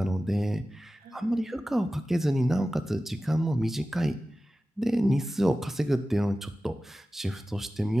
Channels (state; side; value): normal; both; correlation 0.95